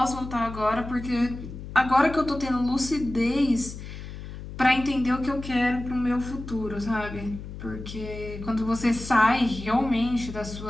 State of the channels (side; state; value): left; noise; hum, 11 dB below the sound